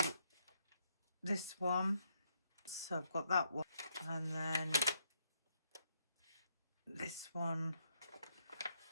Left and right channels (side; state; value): both; inverted; correlation -0.74